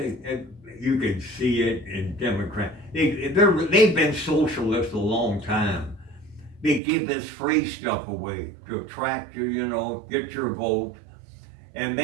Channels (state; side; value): drops out; left; at 6.8 s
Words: And you can see it in Democrats. They've been socialists a long time. They give this free stuff away to attract you, you know, get your vote. And